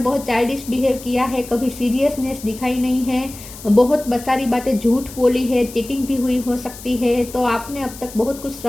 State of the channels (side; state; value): left; noise; hiss, 16 dB below the sound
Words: चाइल्डिश बिहेव किया है, कभी सीरियसनेस दिखाई नहीं है, बहुत सारी बातें झूठ बोली है, चीटिंग भी हुई हो सकती है। तो आपने अब तक बहुत कुछ